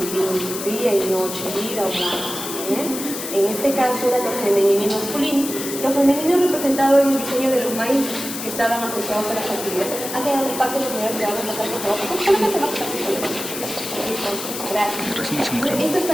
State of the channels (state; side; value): noise; left; hiss, 7 dB below the sound